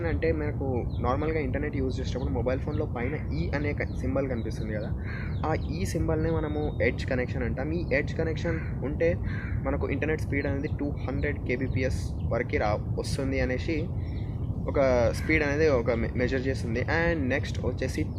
అంటే మనకు నార్మల్గా ఇంటర్నెట్ యూజ్ చేసేటప్పుడు మొబైల్ ఫోన్లో పైన ఈ అనే సింబల్ కనిపిస్తుంది కదా, ఆ ఈ సింబల్నే మనము ఎడ్జ్ కనెక్షన్ అంటాం. ఈ ఎడ్జ్ కనెక్షన్ ఉంటే మనకు ఇంటర్నెట్ స్పీడ్ అనేది 200 kbps వరకు వస్తుంది అనేసి ఒక స్పీడ్ అనేది ఒక మెజర్ చేస్తుంది. అండ్ నెక్స్ట్ వచ్చేసి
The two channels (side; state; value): both; identical; correlation 1.00